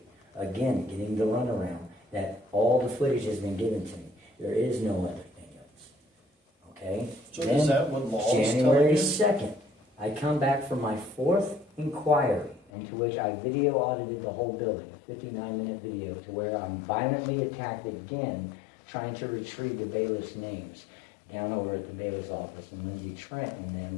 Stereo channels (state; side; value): drops out; right; at 12.7 s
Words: Again, getting the runaround that all the footage has been given to me. There is no other thing else. Okay? So Then, is that what laws tell January you? 2nd, I come back from my 4th inquiry, into which I video audited the whole building, a 59-minute video, to where I'm violently attacked again, trying to retrieve the bailiff's names down over at the bailiff's office, and Lindsay Trent and